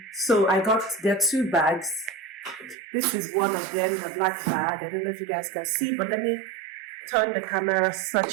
So there are two bags. This is one of them, the black bag. I don't know if you guys can see, but let me turn the camera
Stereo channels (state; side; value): drops out; left; at 2.8 s